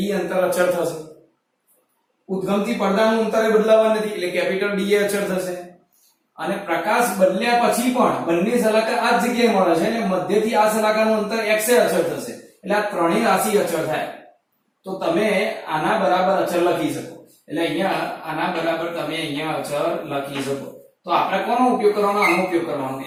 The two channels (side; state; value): both; identical; correlation 1.00